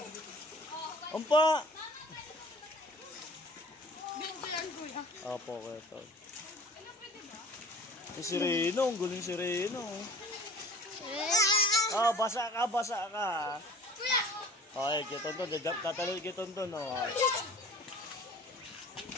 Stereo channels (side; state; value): both; normal; correlation 0.45